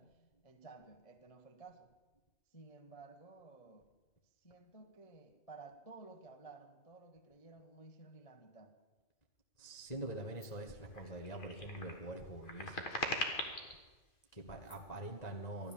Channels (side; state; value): right; late; 2.4 ms